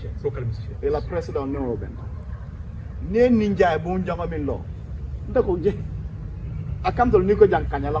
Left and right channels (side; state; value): both; identical; correlation 1.00